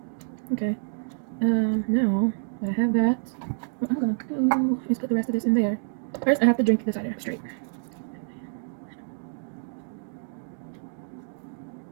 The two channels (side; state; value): left; silent; digital silence